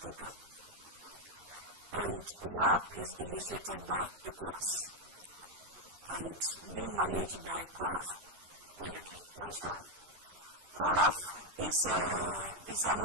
Okay. And Waapp is initiated by ECOWAS and being managed by CORAF. Wait a minute, what is CORAF? CORAF is an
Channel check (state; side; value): late; left; 11 ms